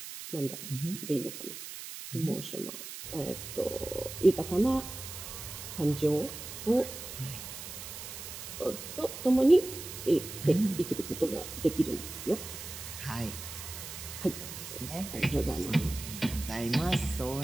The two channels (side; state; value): right; noise; hiss, 10 dB below the sound